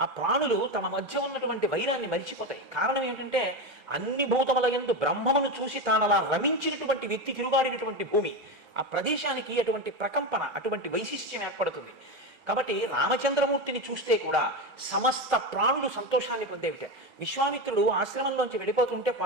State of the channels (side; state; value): both; normal; correlation 0.17